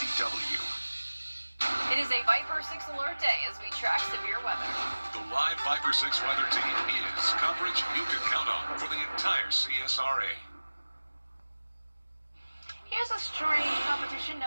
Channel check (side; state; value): both; inverted; correlation -1.00